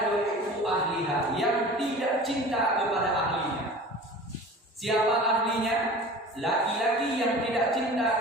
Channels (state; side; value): normal; both; correlation 0.39